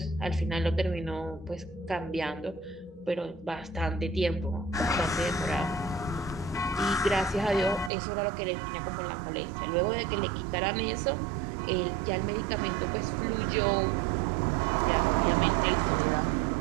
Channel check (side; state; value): left; drops out; at 7.9 s